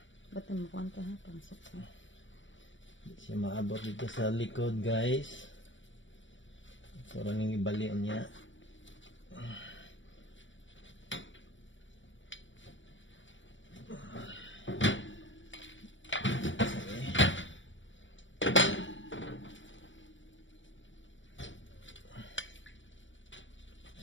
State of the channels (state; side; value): late; right; 0.55 ms